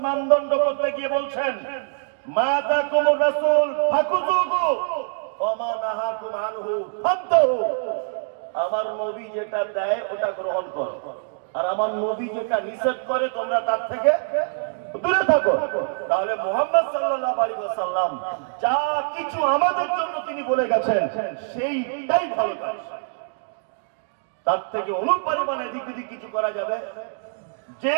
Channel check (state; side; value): silent; left; digital silence